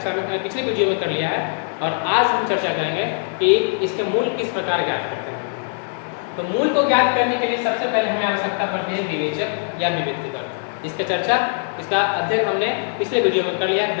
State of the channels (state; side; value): silent; right; 65 dB below the other